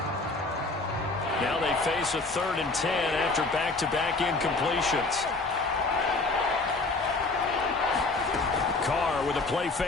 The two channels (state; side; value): quieter; right; 3.5 dB